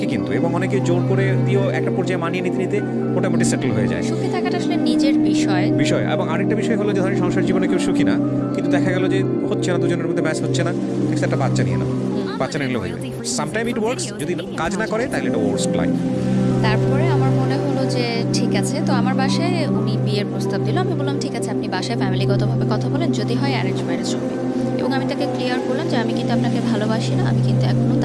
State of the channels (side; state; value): both; identical; correlation 1.00